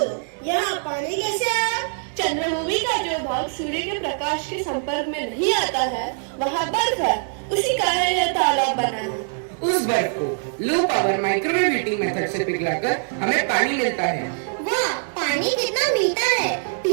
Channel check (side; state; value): left; silent; digital silence